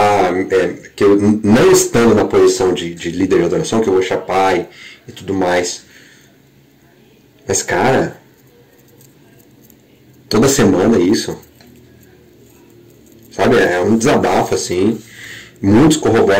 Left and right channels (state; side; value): identical; both; correlation 1.00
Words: que eu não estando na posição de líder de adoração, que eu vou chapar e tudo mais. Mas, cara, toda semana isso. Sabe, é um desabafo, assim. Muitos